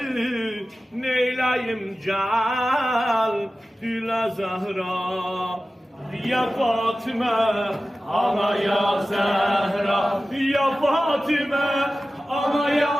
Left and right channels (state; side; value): normal; both; correlation 0.95